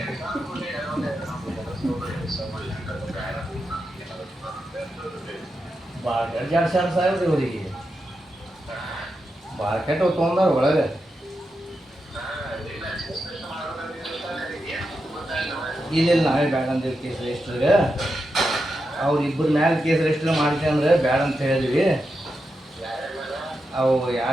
ಭಾಳ ಜಾಡ್ಸ್ಯಾರ ಸಾಹೇಬ್ರು ಇವರಿಗೆ, ಭಾಳ ಕೆಟ್ಟ ತೊಗೊಂಡಾರ ಒಳಗೆ. ಇಲ್ಲ ನಾವೇ ಬ್ಯಾಡ ಅಂತೀವಿ ಕೇಸ್ ರಿಜಿಸ್ಟರ್ಗೆ. ಅವ್ರು ಇಬ್ಬರ ಮ್ಯಾಲೆ ಕೇಸ್ ರಿಜಿಸ್ಟರ್ ಮಾಡ್ತೀವಿ ಅಂದ್ರೆ ಬ್ಯಾಡ ಅಂತ ಹೇಳಿದ್ವಿ. ಅವು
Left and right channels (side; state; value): both; normal; correlation 0.87